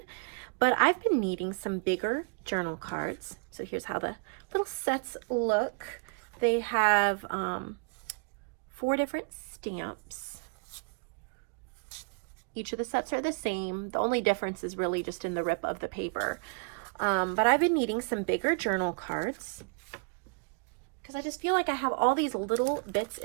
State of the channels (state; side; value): quieter; left; 36.3 dB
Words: But I've been needing some bigger journal cards. So here's how the little sets look. They have 4 different stamps. Each of the sets are the same. The only difference is really just in the rip of the paper. But I've been needing some bigger journal cards because I just feel like I have all these little bits